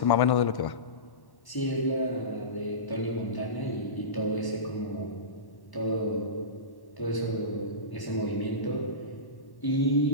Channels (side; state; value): right; late; 1.1 ms